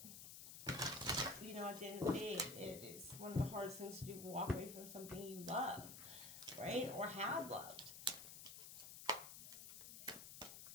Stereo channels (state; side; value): noise; left; hiss, 10 dB below the sound